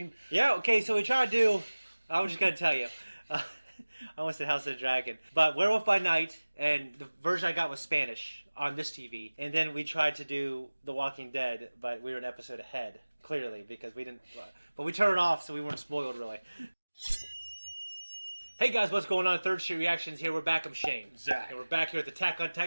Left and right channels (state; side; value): inverted; both; correlation -1.00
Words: Yeah, okay, so we try to do... I was just going to tell you. I almost said House of the Dragon. But Werewolf by Night, and the version I got was Spanish on this TV. And then we tried to do The Walking Dead, but we were an episode ahead, clearly, because we didn't... But we turned it off, so we weren't spoiled, really. Hey guys, what's going on? Third Street Reactions here. We're back. I'm Shane. Zack. And we're back here with Attack on